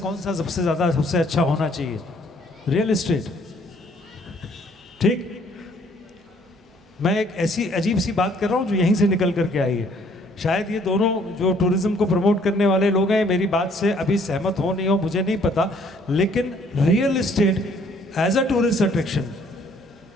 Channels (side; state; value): both; normal; correlation 0.62